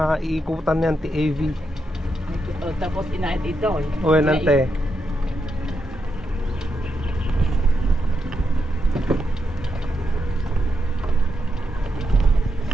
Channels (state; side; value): normal; both; correlation 0.83